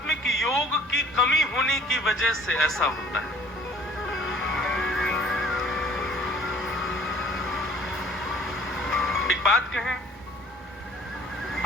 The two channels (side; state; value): both; normal; correlation 0.53